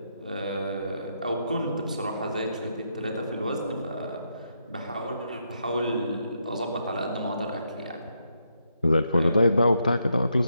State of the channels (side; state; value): both; inverted; correlation -0.80